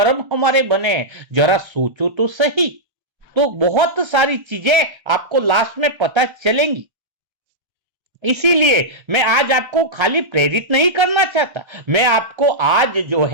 हमारे बने, जरा सोचो तो सही। तो बहुत सारी चीजें आपको लास्ट में पता चलेंगी। इसीलिए मैं आज आपको खाली प्रेरित नहीं करना चाहता, मैं आपको आज जो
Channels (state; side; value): late; left; 1.3 ms